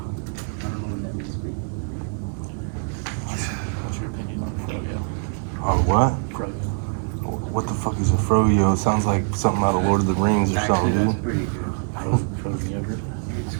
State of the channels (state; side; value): silent; left; 56 dB below the other